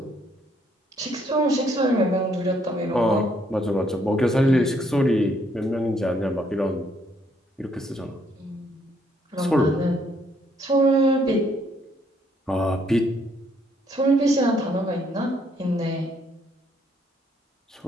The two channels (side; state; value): both; normal; correlation 0.69